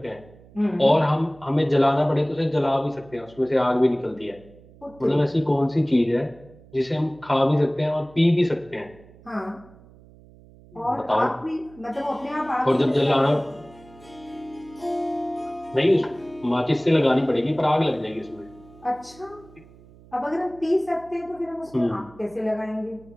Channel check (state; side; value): noise; right; hum, 24 dB below the sound